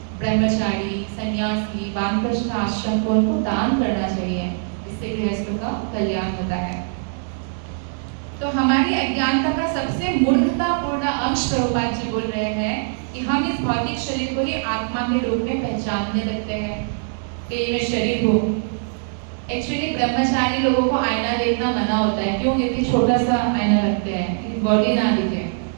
ब्रह्मचारी, सन्यासी, वानप्रस्थ आश्रम को उनको दान करना चाहिए, इससे गृहस्थों का कल्याण होता है। तो हमारी अज्ञानता का सबसे मूर्खतापूर्ण अंश प्रभुपाद जी बोल रहे हैं कि हम इस भौतिक शरीर को ही आत्मा के रूप में पहचानने लगते हैं कि ये मैं शरीर हूँ, एक्चुअली ब्रह्मचारी लोगों को आईना देखना मना होता है, क्यों? क्योंकि छोटा सा आईना रखते हैं कि बॉडी ना दिखे।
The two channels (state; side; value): silent; left; 64 dB below the other